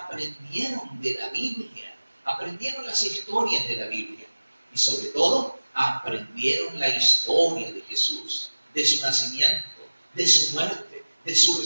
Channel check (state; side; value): inverted; both; correlation -1.00